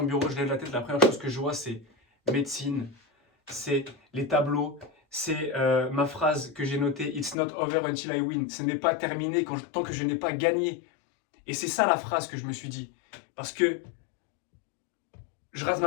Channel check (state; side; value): drops out; right; at 7.4 s